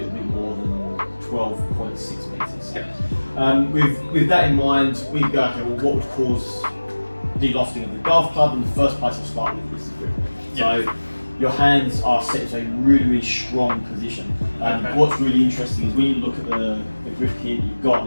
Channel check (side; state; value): both; inverted; correlation -1.00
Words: bit more than 12.6 metres. Yeah. With that in mind, we go, okay, well, what would cause de-lofting of the golf club? In the first place, I'll start with is the grip. Yeah. So your hands are set into a really, really strong position. What's really interesting is when you look at the grip here that you've got,